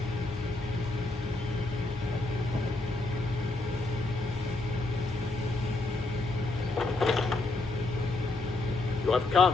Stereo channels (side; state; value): right; quieter; 3.0 dB